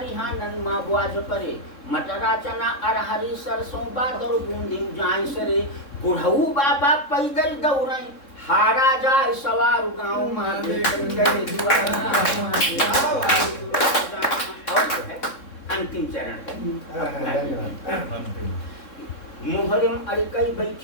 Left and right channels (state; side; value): late; right; 3.6 ms